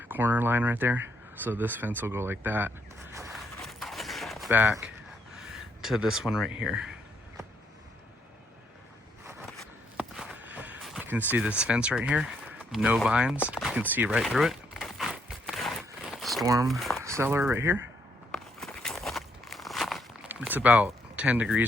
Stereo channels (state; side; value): normal; both; correlation 0.73